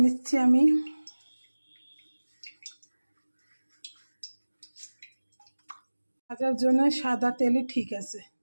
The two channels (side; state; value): both; inverted; correlation -1.00